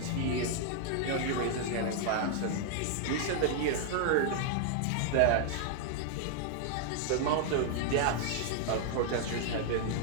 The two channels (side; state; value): both; different; correlation 0.00